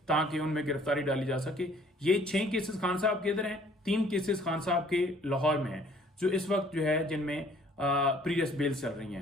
ताकि उनमें गिरफ्तारी डाली जा सके। ये 6 केसेस खान साहब के इधर हैं, 3 केसेस खान साहब के लाहौर में हैं जो इस वक्त जो है जिनमें प्रीवियस बेल्स चल रही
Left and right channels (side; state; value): both; normal; correlation 0.58